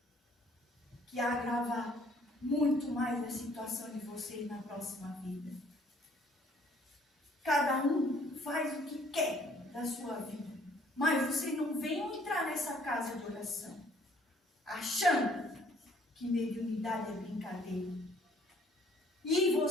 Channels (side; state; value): both; normal; correlation 0.60